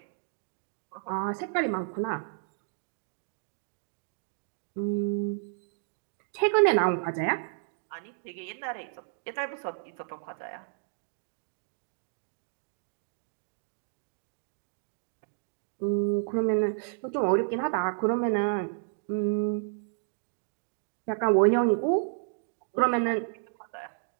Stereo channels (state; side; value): silent; left; digital silence